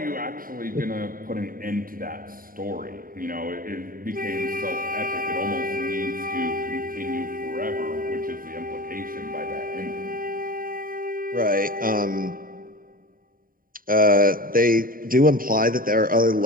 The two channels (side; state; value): left; late; 0.41 ms